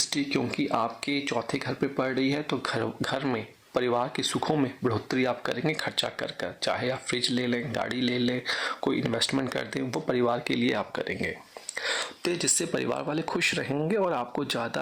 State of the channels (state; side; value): identical; both; correlation 1.00